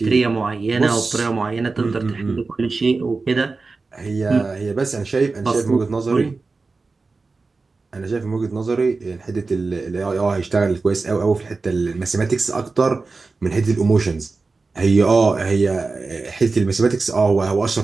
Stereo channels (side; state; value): left; quieter; 4.0 dB